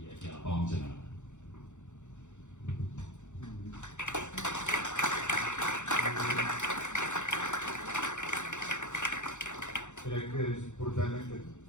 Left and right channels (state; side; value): late; right; 0.84 ms